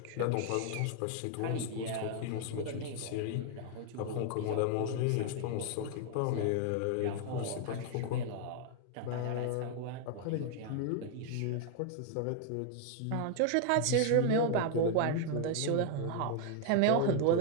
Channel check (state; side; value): different; both; correlation 0.00